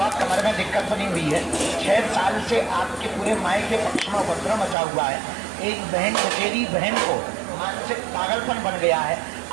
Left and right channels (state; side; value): drops out; left; at 4.8 s